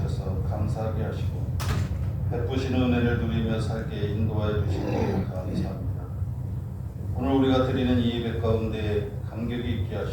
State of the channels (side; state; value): both; identical; correlation 1.00